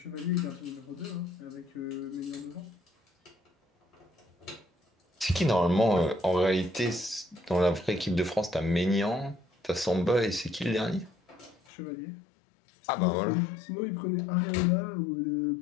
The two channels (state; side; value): drops out; right; at 11.6 s